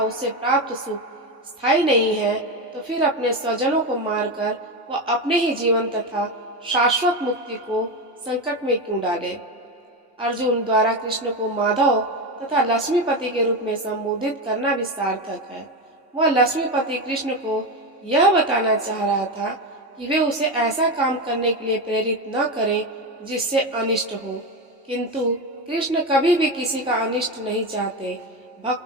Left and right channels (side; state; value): both; normal; correlation 0.15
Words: उससे प्राप्त सुख स्थायी नहीं है, तो फिर अपने स्वजनों को मारकर वह अपने ही जीवन तथा शाश्वत मुक्ति को संकट में क्यों डाले। अर्जुन द्वारा कृष्ण को माधव तथा लक्ष्मीपति के रूप में संबोधित करना भी सार्थक है। वह लक्ष्मीपति कृष्ण को यह बताना चाह रहा था कि वे उसे ऐसा काम करने के लिए प्रेरित न करें जिससे अनिष्ट हो, किंतु कृष्ण कभी भी किसी का अनिष्ट नहीं चाहते,